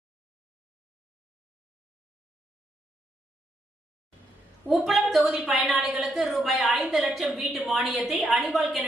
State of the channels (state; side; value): normal; both; correlation 0.78